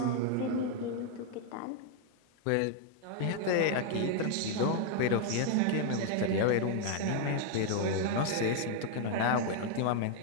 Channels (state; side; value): different; both; correlation 0.00